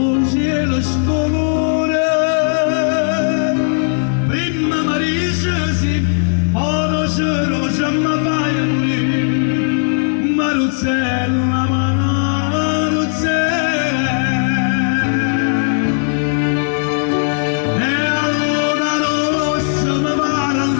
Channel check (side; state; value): right; silent; digital silence